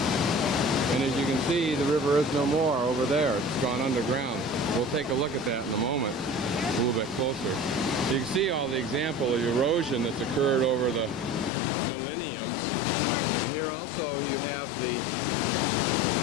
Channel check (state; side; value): drops out; right; at 11.5 s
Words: And as you can see, the river is no more over there. It's gone underground. We'll take a look at that in a moment, a little bit closer. You can see all the example of erosion that's occurred over the millenniums. And here also you have the,